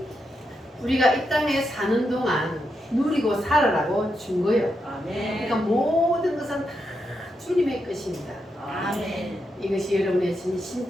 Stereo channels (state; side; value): normal; both; correlation 0.84